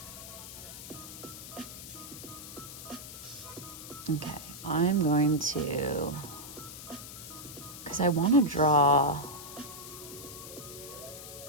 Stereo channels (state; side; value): noise; left; hiss, 12 dB below the sound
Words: Okay, I'm going to, because I want to draw,